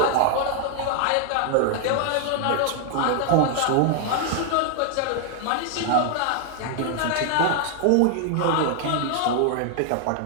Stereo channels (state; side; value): different; both; correlation 0.00